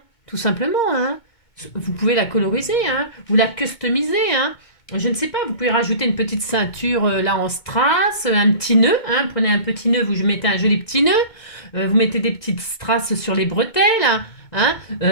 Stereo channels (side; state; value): right; late; 2.2 ms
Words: tout simplement, hein. Vous pouvez la coloriser, hein, ou la customiser. Hein. Je ne sais pas, vous pouvez rajouter une petite ceinture là en strass, un petit nœud. Hein, prenez un petit nœud, vous mettez un joli petit nœud. Vous mettez des petites strass sur les bretelles. Hein,